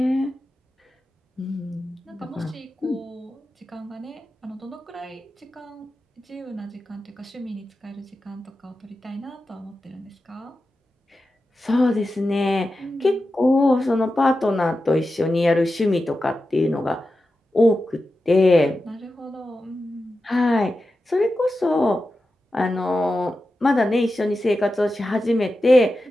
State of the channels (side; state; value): both; normal; correlation 0.92